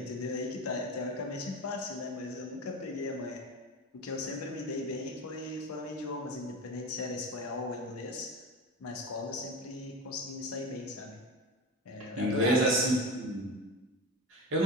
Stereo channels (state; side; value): normal; both; correlation 0.26